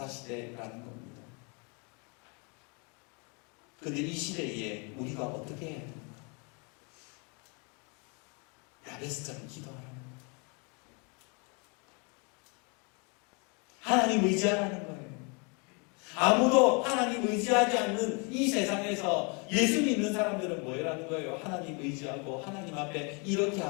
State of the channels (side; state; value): right; quieter; 33.4 dB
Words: 시대라는 겁니다. 그런데 이 시대에 우리가 어떻게 해야 됩니까? 야베스처럼 기도하라는 거예요. 하나님 의지하라는 거예요. 아무도 하나님 의지하지 않는 이 세상에서 예수 믿는 사람들은 뭐라는 거예요? 하나님 의지하고 하나님 앞에 이렇게